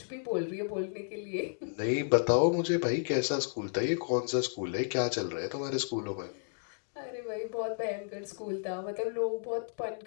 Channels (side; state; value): right; silent; digital silence